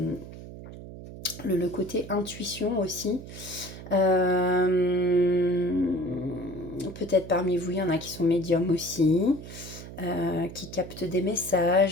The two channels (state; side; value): noise; right; hum, 13 dB below the sound